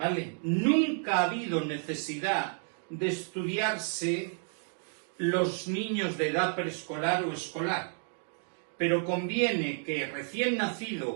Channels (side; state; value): left; silent; 57 dB below the other